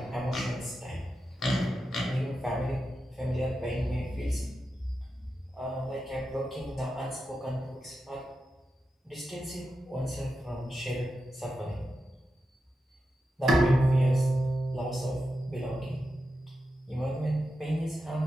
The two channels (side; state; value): both; normal; correlation 0.89